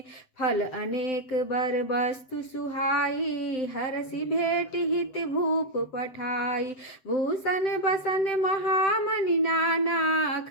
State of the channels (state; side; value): late; right; 7.7 ms